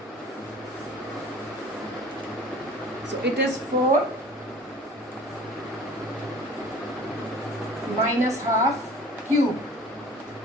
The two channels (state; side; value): normal; both; correlation 0.45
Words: So it is 4 minus half cube